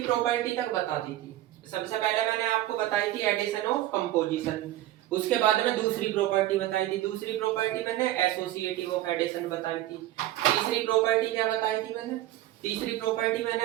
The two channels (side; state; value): left; quieter; 14.5 dB